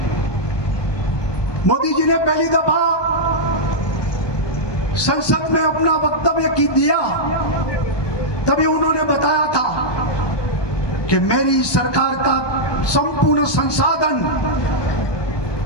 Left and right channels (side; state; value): right; late; 1.2 ms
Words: मोदी जी ने पहली दफा संसद में अपना वक्तव्य दिया, तभी उन्होंने बताया था कि मेरी सरकार का संपूर्ण संसाधन